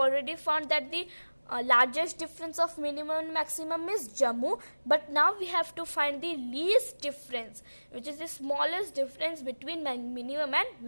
found that the largest difference of minimum and maximum is Jammu, but now we have to find the least difference, which is the smallest difference between minimum and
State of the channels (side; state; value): both; inverted; correlation -1.00